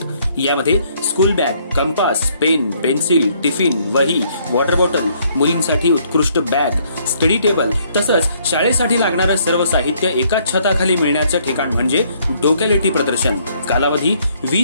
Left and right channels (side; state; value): both; inverted; correlation -0.66